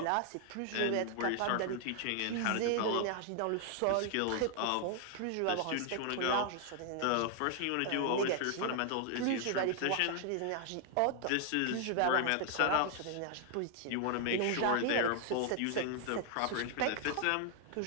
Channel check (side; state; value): both; different; correlation 0.00